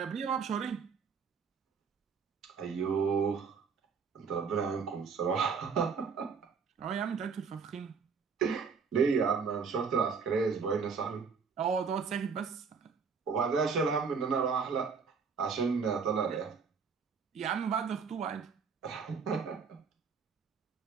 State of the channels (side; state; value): left; quieter; 5.7 dB